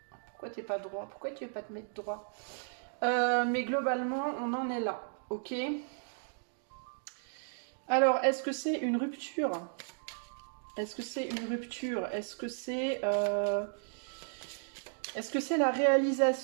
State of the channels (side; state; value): left; silent; digital silence